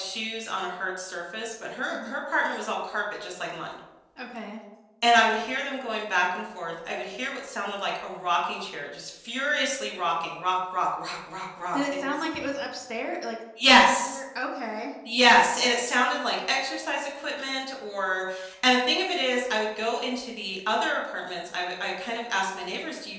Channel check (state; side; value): identical; both; correlation 1.00